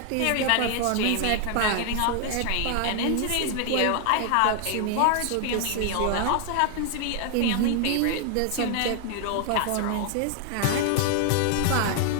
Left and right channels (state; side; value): different; both; correlation 0.00